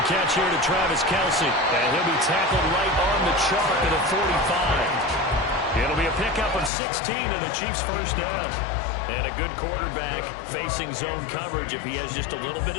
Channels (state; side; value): drops out; right; at 6.7 s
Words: catch here to Travis Kelce. And he'll be tackled right on the chalk at the 45. It'll be a pickup of 16 and the Chiefs' first down. And a good quarterback facing zone coverage. If he has just a little bit